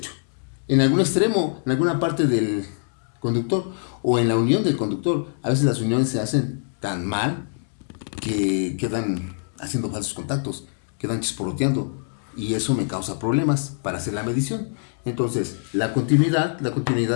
En algún extremo, en alguna parte del conductor o en la unión del conductor. A veces las uniones se hacen tan mal que quedan haciendo falsos contactos, quedan chisporroteando y eso me causa problemas para hacer la medición. Entonces, la continuidad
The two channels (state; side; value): silent; right; digital silence